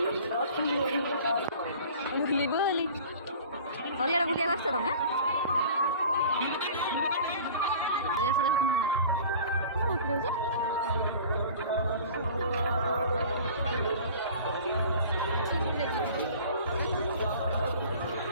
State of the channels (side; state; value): both; inverted; correlation -0.43